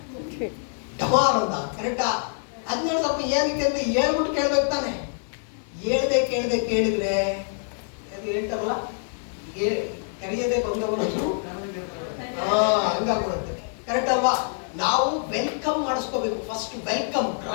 ಡಮಾರ್ ಅಂತ. ಕರೆಕ್ಟಾ? 17,000 ರೂಪಾಯಿ ಏನಕ್ಕೆ ಅಂತ ಹೇಳ್ಬಿಟ್ಟು ಕೇಳ್ಬೇಕು ತಾನೆ. ಹೇಳ್ದೆ ಕೇಳಿದ್ರೆ ಅದು ಹೇಳ್ತಾರಲ್ಲ, ಕರೆಯದೆ ಬಂದವನು ಹಂಗಾಗ್ಬಿಡುತ್ತೆ. ಕರೆಕ್ಟ್ ಅಲ್ವಾ? ನಾವು ವೆಲ್ಕಮ್ ಮಾಡಿಸ್ಕೋಬೇಕು. First welcome,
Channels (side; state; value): right; silent; 58 dB below the other